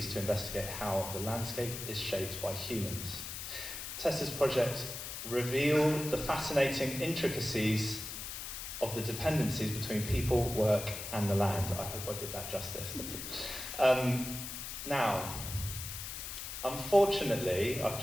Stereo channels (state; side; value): noise; left; hiss, 7 dB below the sound